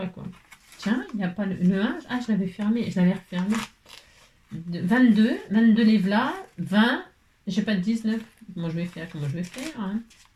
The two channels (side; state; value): both; identical; correlation 1.00